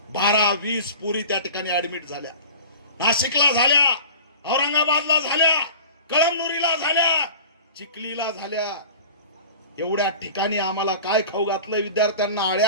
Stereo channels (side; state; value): both; inverted; correlation -0.38